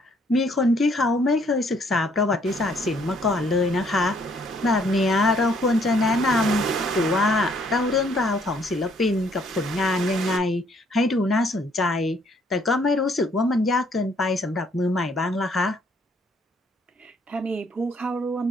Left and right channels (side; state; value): both; normal; correlation 0.65